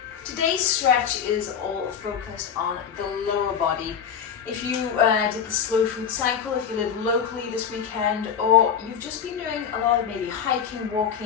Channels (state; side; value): quieter; right; 7.6 dB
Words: Today's stretch is all focused on the lower body. If you did the slow food cycle, if you live locally this weekend, or you've just been doing a lot of maybe hiking,